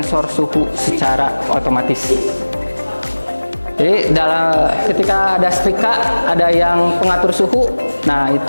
suhu secara otomatis. Jadi ketika ada setrika, ada yang pengatur suhu, nah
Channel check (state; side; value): inverted; both; correlation -1.00